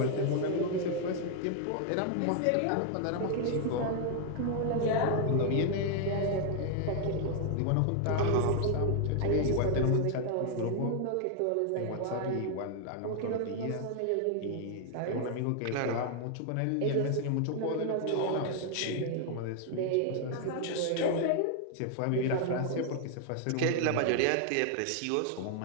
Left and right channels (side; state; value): both; different; correlation 0.00